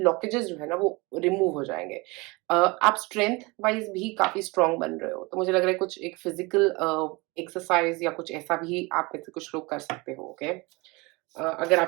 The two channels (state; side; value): quieter; left; 25.4 dB